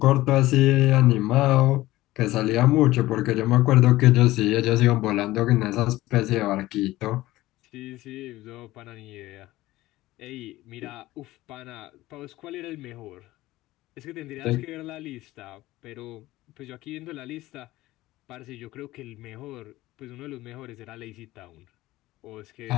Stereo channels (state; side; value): quieter; right; 17.3 dB